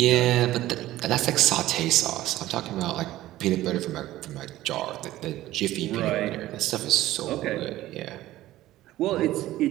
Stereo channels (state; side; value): quieter; left; 15.4 dB